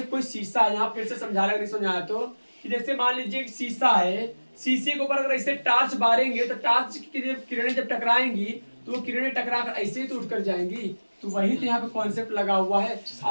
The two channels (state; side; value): inverted; both; correlation -1.00